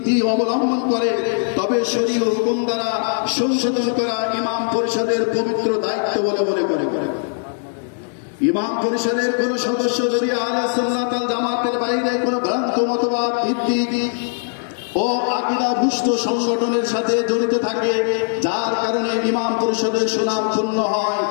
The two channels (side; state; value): right; silent; digital silence